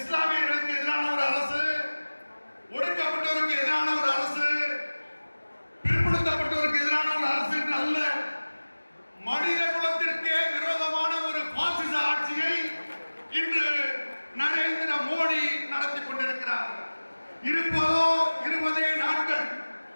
எதிரான ஒரு அரசு, ஒடுக்கப்பட்டவருக்கு எதிரான ஒரு அரசு, பிற்படுத்தப்பட்டவருக்கு எதிரான ஒரு அரசு அல்ல, மனித குலத்திற்கே விரோதமான ஒரு பாசிச ஆட்சியை இன்று நரேந்திர மோடி நடத்தி கொண்டிருக்கிறார். இருப்பதோ 20 நாட்கள்.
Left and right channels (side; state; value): both; inverted; correlation -1.00